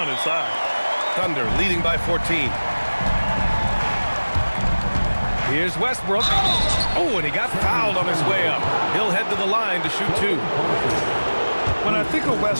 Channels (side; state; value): both; inverted; correlation -1.00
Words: inside. Thunder leading by 14. Here's Westbrook. Oh, and he got fouled on his way up. He'll head to the line to shoot 2. When I think of